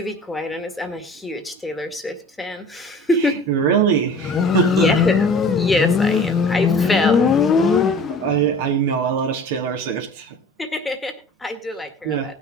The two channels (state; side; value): normal; both; correlation 0.43